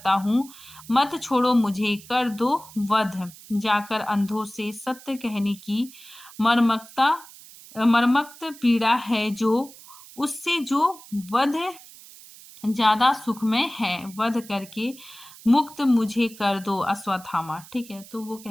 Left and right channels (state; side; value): noise; right; hiss, 19 dB below the sound